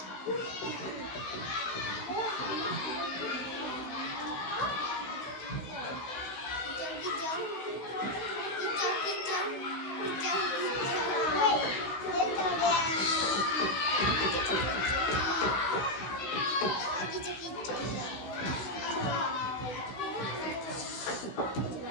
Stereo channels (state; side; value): late; right; 16 ms